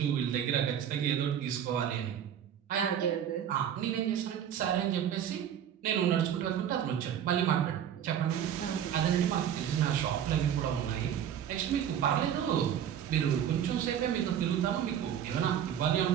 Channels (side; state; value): left; quieter; 9.5 dB